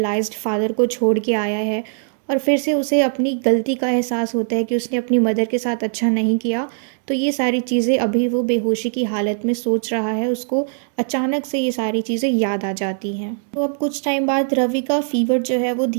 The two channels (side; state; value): left; silent; 64 dB below the other